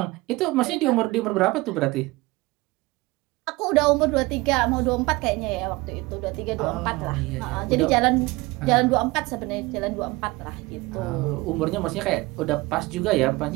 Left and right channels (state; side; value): quieter; left; 22.1 dB